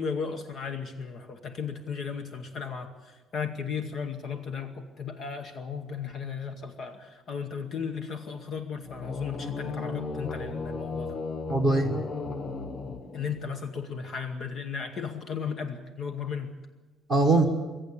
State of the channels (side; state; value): both; normal; correlation 0.60